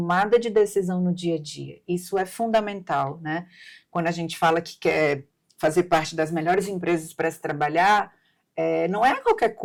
de decisão no dia a dia. Isso é fundamental, né? Quando a gente fala que quer fazer parte das melhores empresas para se trabalhar, não é a qualquer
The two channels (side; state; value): both; identical; correlation 1.00